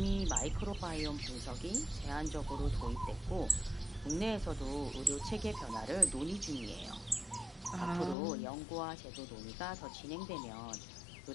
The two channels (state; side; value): drops out; right; at 8.2 s